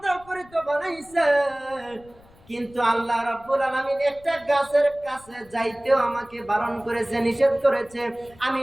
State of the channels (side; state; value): left; noise; rumble, 26 dB below the sound